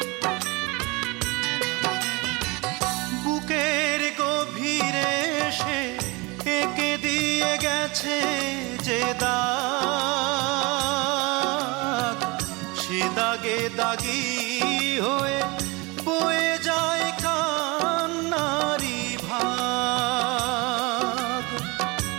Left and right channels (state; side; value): quieter; left; 25.7 dB